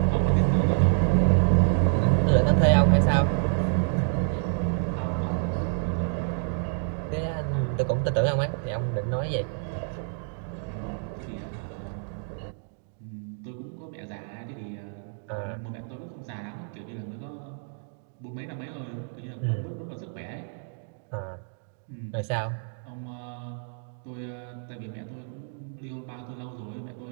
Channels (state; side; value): silent; left; 59 dB below the other